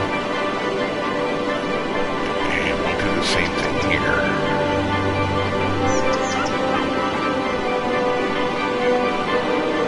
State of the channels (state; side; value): identical; both; correlation 1.00